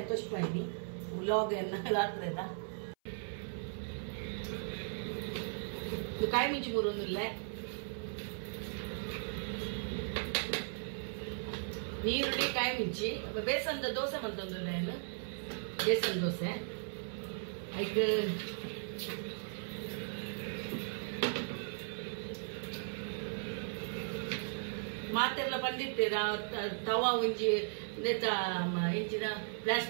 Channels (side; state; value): left; silent; 53 dB below the other